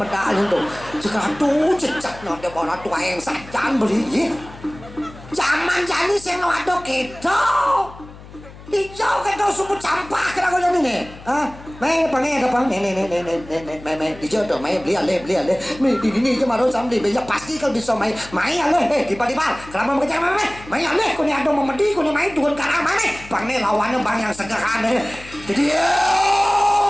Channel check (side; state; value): left; noise; hum, 18 dB below the sound